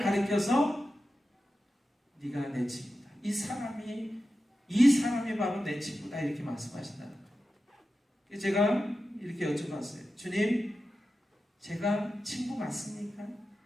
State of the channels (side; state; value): both; normal; correlation 0.92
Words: 가리켜서 네가 내 친구다. 이 사람이 바로 내 친구다 이렇게 말씀하신다는 거예요. 제가 이렇게 여쭤봤어요. 주님, 제가 친구 맞습니까?